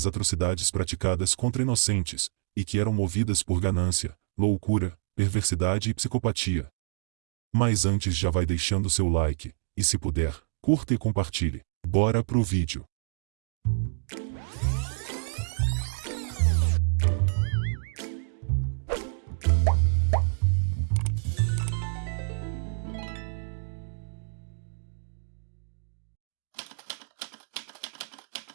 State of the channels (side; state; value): left; silent; digital silence